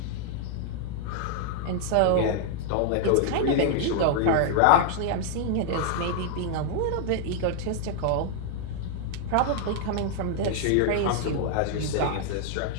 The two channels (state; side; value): different; both; correlation -0.01